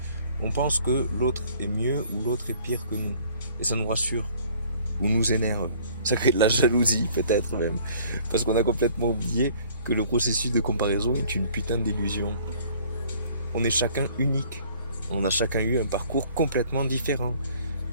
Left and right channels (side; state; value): both; inverted; correlation -0.55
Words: on pense que l'autre est mieux ou l'autre est pire que nous. Et ça nous rassure ou nous énerve. Ça crée de la jalousie peut-être même. Parce qu'on a complètement oublié que le processus de comparaison est une putain d'illusion. On est chacun unique. On a chacun eu un parcours complètement différent.